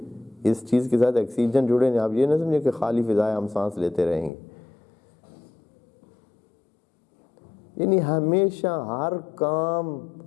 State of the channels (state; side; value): drops out; right; at 4.3 s